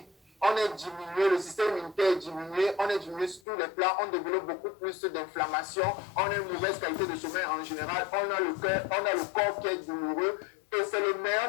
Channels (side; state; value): right; drops out; at 3.4 s